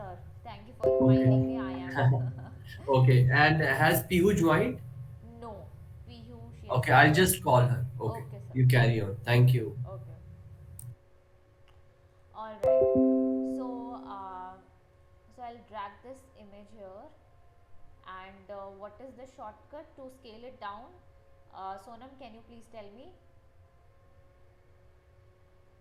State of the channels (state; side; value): identical; both; correlation 1.00